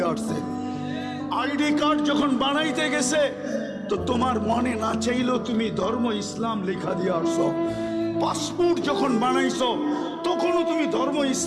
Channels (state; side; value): identical; both; correlation 1.00